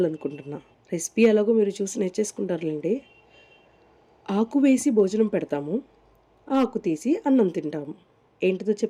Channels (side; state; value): both; identical; correlation 1.00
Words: రెసిపీ ఎలాగో మీరు చూసి నేర్చేసుకుంటారులేండి. ఆకు వేసి భోజనం పెడతాము, ఆకు తీసి అన్నం తింటాము. ఏంటిదో